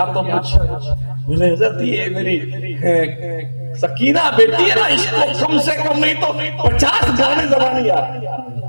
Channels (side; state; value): both; inverted; correlation -1.00